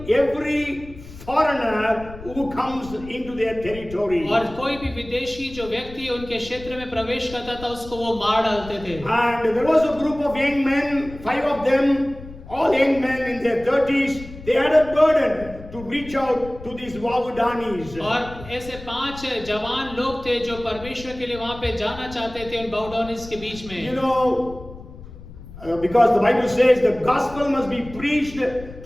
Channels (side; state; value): left; noise; rumble, 16 dB below the sound